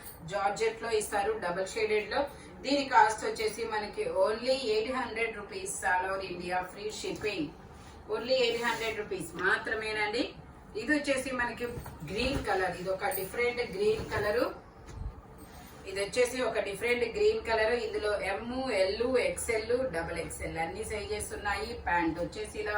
జార్జెట్ లో ఇస్తారు, డబుల్ షేడెడ్ లో. దీని కాస్ట్ వచ్చేసి మనకి only 800 rupees all over India, free shipping. Only 800 rupees మాత్రమేనండి. ఇది వచ్చేసి మనకి గ్రీన్ కలర్, ఇది ఒక డిఫరెంట్ గ్రీన్ కలరు. ఇందులో ఎమ్, ఎల్, ఎక్స్ఎల్, డబుల్ ఎక్స్ఎల్ అన్ని సైజెస్ ఉన్నాయి. ప్యాంట్ వచ్చేసి ఇలా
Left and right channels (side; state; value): both; identical; correlation 1.00